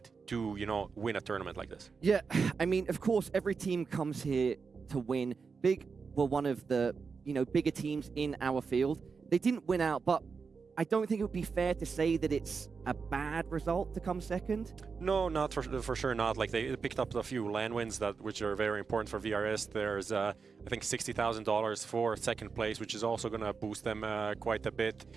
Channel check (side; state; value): left; quieter; 5.2 dB